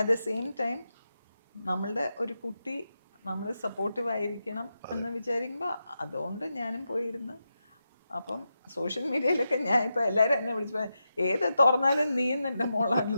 the same time നമ്മളുടെ ഒരു കുട്ടി നമ്മൾ സപ്പോർട്ടീവ് ആയിരിക്കണം എന്ന് വിചാരിക്കുമ്പോൾ അതുകൊണ്ട് ഞാനും പോയിരുന്ന്. അപ്പം സോഷ്യൽ മീഡിയയിലൊക്കെ ഞാൻ ഇപ്പം എല്ലാവരും എന്നെ വിളിച്ചു ഏത് തുറന്നാലും നീയും എൻ്റെ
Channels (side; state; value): both; inverted; correlation -0.88